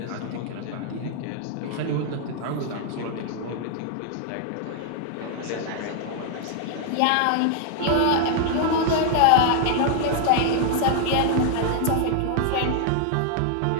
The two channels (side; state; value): both; different; correlation -0.01